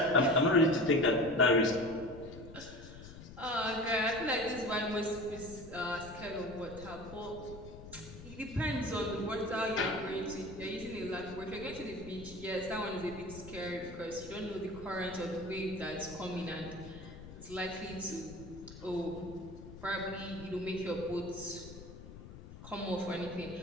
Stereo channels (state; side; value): noise; left; rumble, 14 dB below the sound